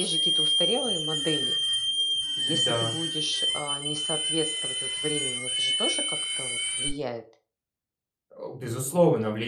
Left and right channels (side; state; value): both; identical; correlation 1.00